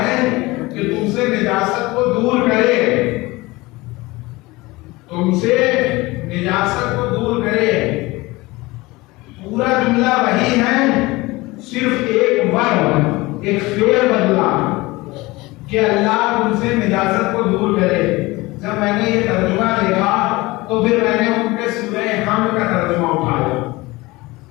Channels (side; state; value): right; quieter; 21.5 dB